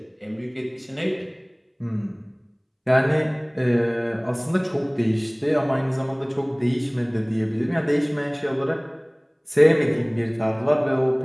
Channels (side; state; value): both; identical; correlation 1.00